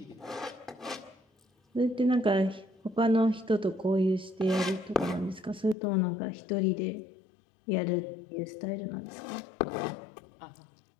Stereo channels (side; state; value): right; drops out; at 5.8 s